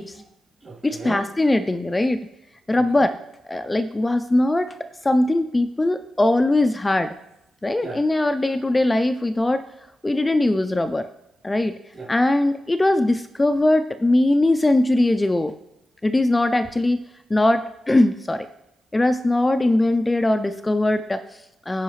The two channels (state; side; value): normal; both; correlation 0.97